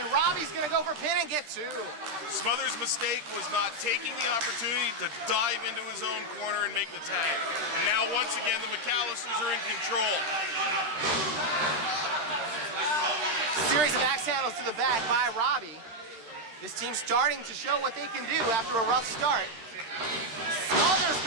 Robbie's gonna go for pin and get 2. Smothers' mistake was not taking the opportunity to dive into his own corner and make the tag. Now, once again, the MacAllisters are in control. Series of axe handles to the back by Robbie. This team's starting to show what they can do after a rough start. Smothers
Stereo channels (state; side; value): late; left; 13 ms